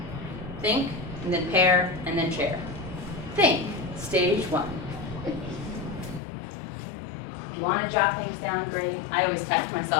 Think, and then pair, and then share. Think, stage 1. If you want to jot things down, great. I always text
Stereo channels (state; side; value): drops out; right; at 6.2 s